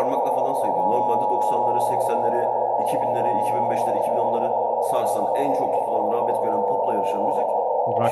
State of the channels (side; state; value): both; identical; correlation 1.00